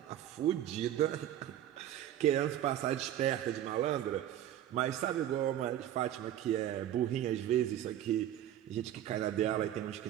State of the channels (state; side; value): quieter; left; 11.7 dB